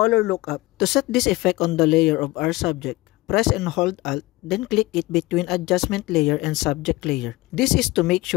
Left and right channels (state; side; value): quieter; right; 20.1 dB